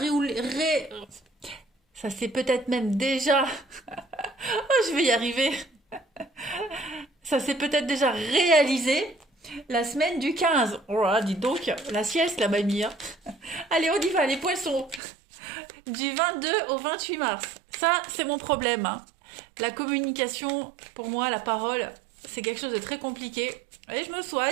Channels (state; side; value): drops out; left; at 15.0 s